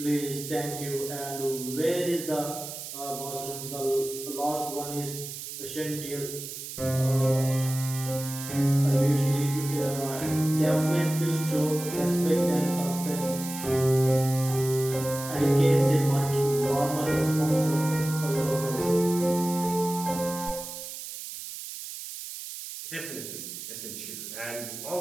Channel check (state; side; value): noise; right; hiss, 9 dB below the sound